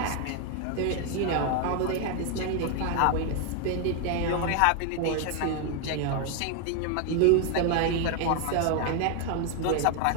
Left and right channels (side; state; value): both; different; correlation 0.01